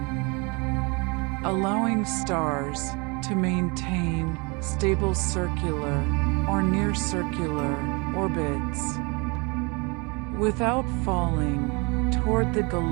allowing stars to maintain stable circular or near circular orbits without falling toward the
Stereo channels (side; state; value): left; quieter; 29.4 dB